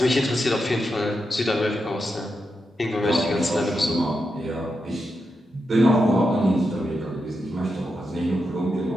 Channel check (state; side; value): normal; both; correlation 0.86